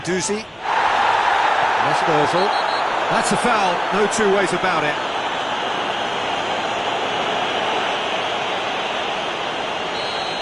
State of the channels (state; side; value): identical; both; correlation 1.00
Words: That's Ozil. That's a foul, no two ways about it.